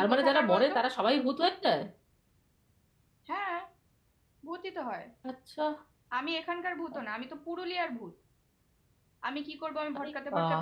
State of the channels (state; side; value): identical; both; correlation 1.00